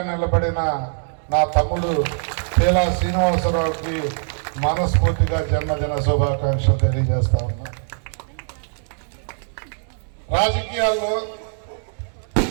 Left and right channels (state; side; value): silent; left; digital silence